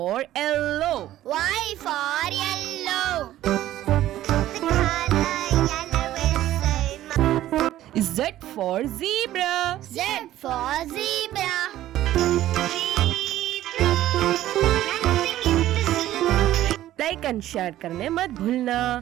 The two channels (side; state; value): left; quieter; 13.8 dB